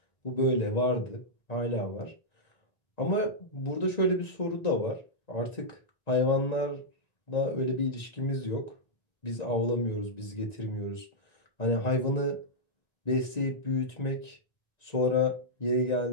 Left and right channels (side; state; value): right; late; 1.9 ms